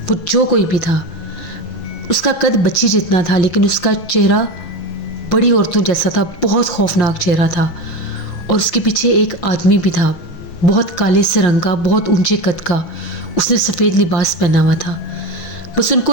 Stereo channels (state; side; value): late; right; 6.1 ms